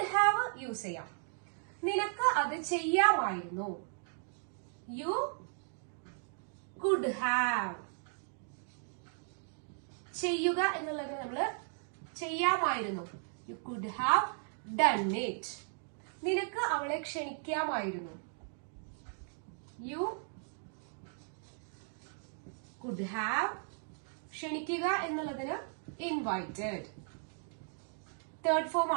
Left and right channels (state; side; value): silent; left; 54 dB below the other